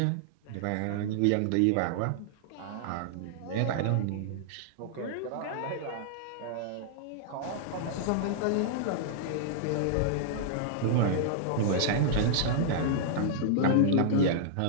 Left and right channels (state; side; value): different; both; correlation -0.01